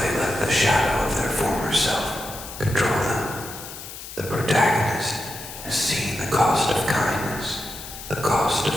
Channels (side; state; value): left; noise; hiss, 12 dB below the sound